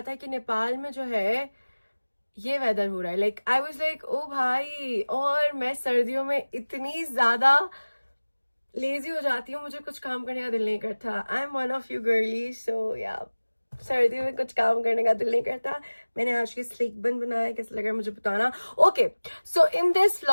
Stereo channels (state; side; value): inverted; both; correlation -1.00